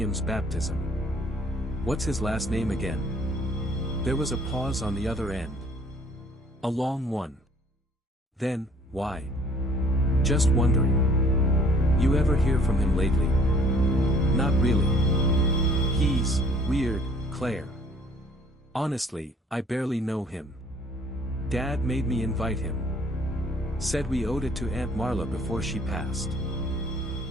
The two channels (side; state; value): both; normal; correlation 0.57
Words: baptism. What's his last name again?" There was a pause on the other end. A long one. Then, "Why?" "Just wondering. You ever hear from him lately?" "Not really. He's weird, Claire. Honestly, I barely know him. Dad made me invite him. Said we owed it to Aunt Marla before she passed."